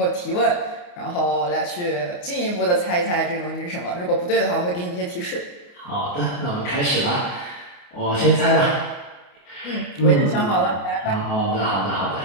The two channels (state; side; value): late; right; 28 ms